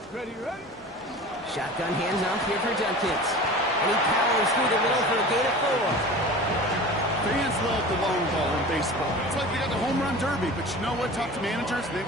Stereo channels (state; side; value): normal; both; correlation 0.37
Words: Ready, ready? Shotgun hands off here for Jenkins. And he powers through the middle for a gain of 4. Fans love the long ball in baseball. It's like you got the home run derby, but you know what? Talk to managers, and they